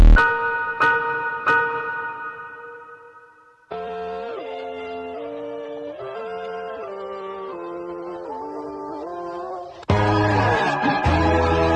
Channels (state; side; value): identical; both; correlation 1.00